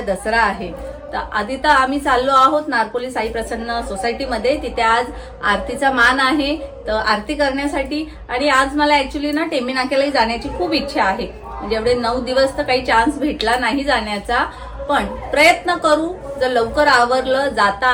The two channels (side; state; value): both; identical; correlation 1.00